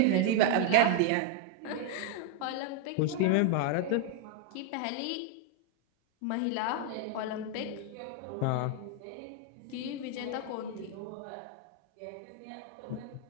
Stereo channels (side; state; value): both; different; correlation 0.01